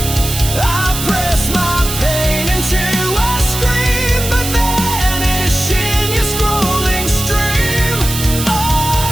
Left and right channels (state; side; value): noise; right; hiss, 6 dB below the sound